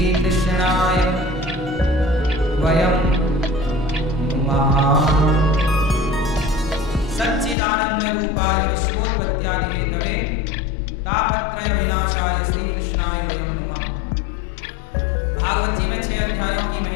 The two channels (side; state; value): right; drops out; at 7.6 s